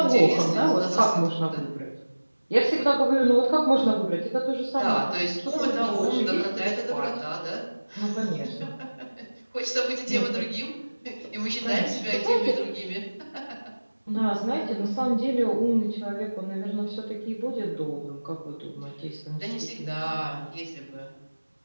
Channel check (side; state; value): both; inverted; correlation -1.00